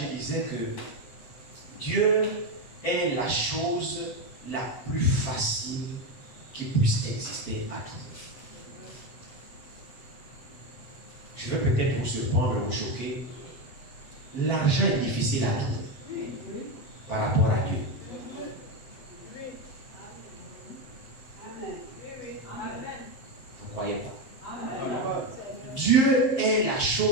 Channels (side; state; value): right; late; 8.0 ms